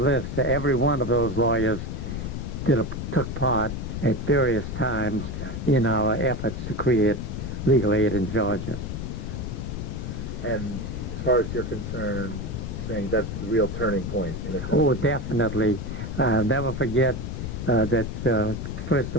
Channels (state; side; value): noise; left; rumble, 5 dB below the sound